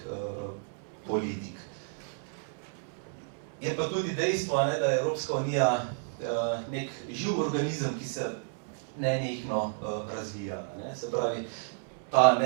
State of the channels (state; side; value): silent; left; 57 dB below the other